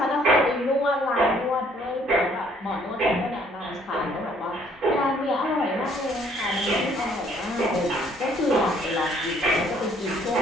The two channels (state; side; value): normal; both; correlation 0.62